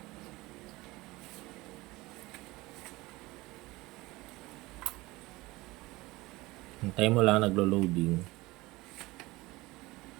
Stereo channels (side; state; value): left; quieter; 20.8 dB